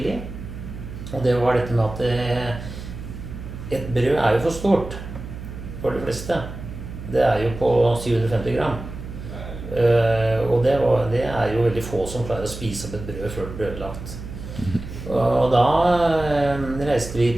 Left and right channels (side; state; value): right; noise; hum, 10 dB below the sound